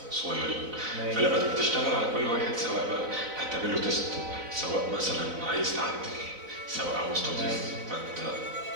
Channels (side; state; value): left; late; 4.0 ms